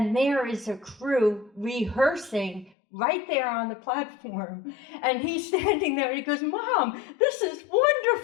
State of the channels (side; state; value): right; drops out; at 2.7 s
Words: there is a crew rehearsing right there on the platform. And he's standing there and he goes, "Mom, this is